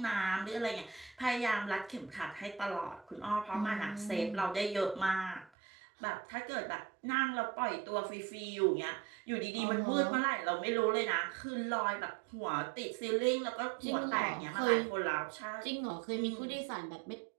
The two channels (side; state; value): left; drops out; at 5.5 s